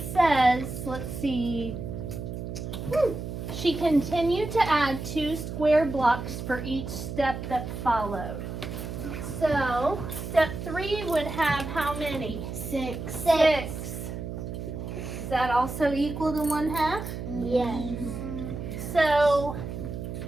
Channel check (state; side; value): noise; right; hum, 7 dB below the sound